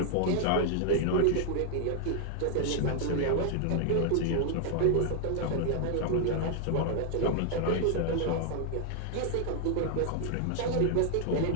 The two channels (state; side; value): different; both; correlation 0.00